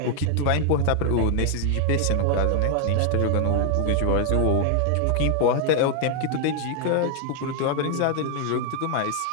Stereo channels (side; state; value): both; different; correlation 0.00